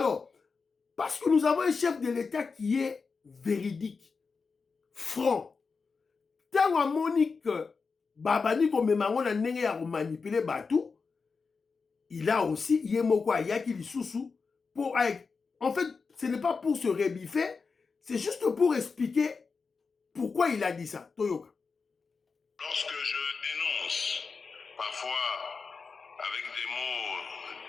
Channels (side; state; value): right; quieter; 4.8 dB